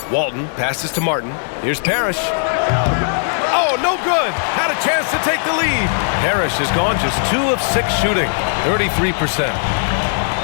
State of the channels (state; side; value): silent; right; 66 dB below the other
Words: Walton passes to Martin. Here's Parrish. Oh, no good. Had a chance to take the lead. Parrish has gone just 2 of 6 shooting. 33%.